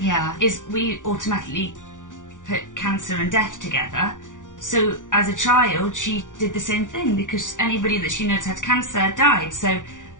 is we automatically put cancer and death together. So as a child, she did the same thing, because anybody that she knows had cancer died. So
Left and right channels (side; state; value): right; late; 0.87 ms